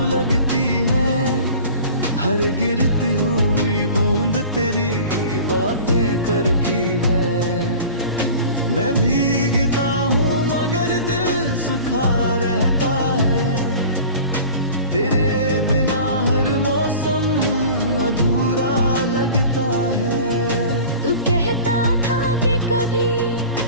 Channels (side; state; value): both; inverted; correlation -0.40